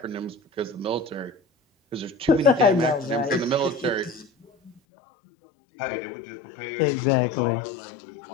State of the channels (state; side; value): drops out; right; at 4.7 s